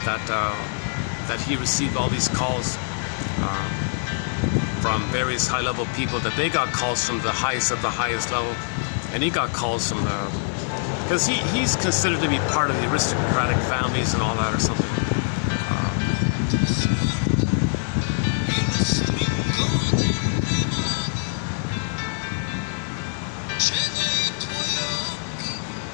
that he received all these calls from various high-level people, that they got calls from the highest of the highest level, and he got calls from because he's considered to be part of the aristocratic families and all that or something.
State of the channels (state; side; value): silent; right; 61 dB below the other